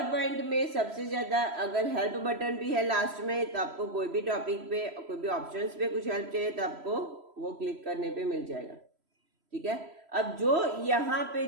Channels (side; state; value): left; late; 3.0 ms